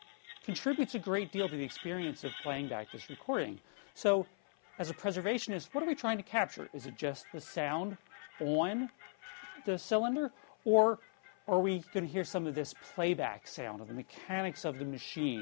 contributes a great deal to the experience of playing back this recording. So, as a preservationist, what are we trying to capture? Is it just the sound on the cylinder, or are we going to hear some of this playback sound, of the mechanics of the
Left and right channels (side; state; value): right; silent; 52 dB below the other